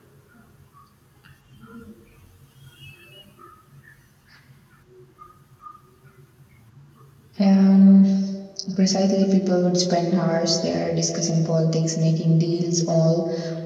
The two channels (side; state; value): both; identical; correlation 1.00